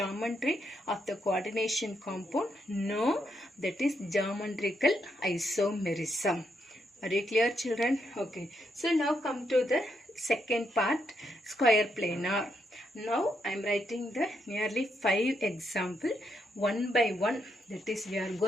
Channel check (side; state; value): both; normal; correlation 0.79